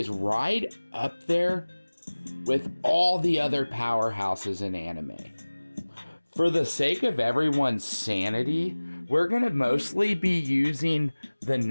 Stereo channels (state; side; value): inverted; both; correlation -1.00